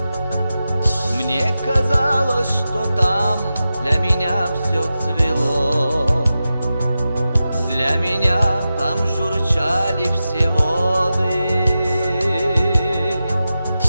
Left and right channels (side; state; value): both; inverted; correlation -0.92